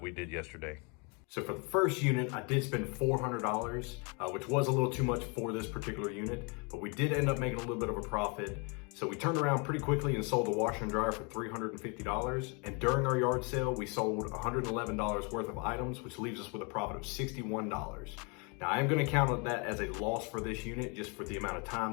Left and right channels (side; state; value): right; quieter; 32.9 dB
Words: we did yesterday. So for the first unit, I did spend $400, which was a little too much for this particular unit, but we did end up making a little bit of a profit. So we turned around pretty quickly and sold the washer and dryer for $350. And during our yard sale, we sold $111 worth of items, which leaves us with a profit of $61. Now I am gonna count that as a loss for this unit, just for the amount of time